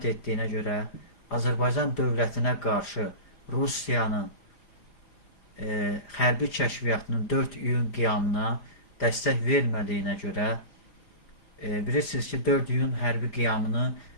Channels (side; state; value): right; late; 4.9 ms